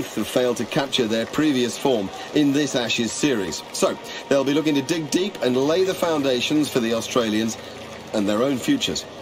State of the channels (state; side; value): identical; both; correlation 1.00